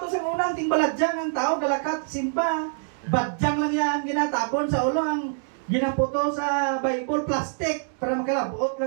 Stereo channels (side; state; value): left; silent; digital silence